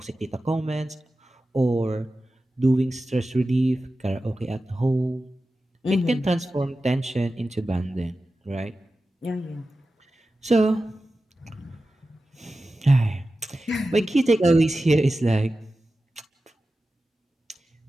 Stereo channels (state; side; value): normal; both; correlation 0.94